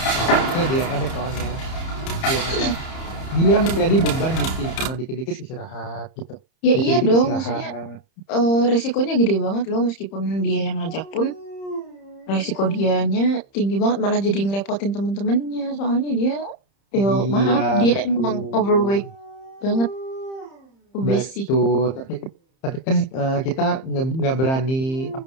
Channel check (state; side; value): late; right; 30 ms